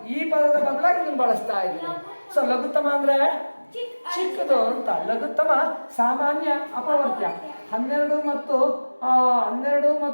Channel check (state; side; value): inverted; both; correlation -1.00